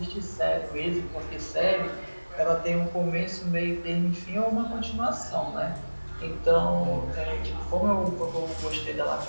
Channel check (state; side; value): inverted; both; correlation -1.00